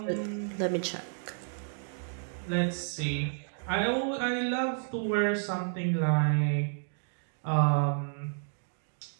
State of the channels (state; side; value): silent; left; digital silence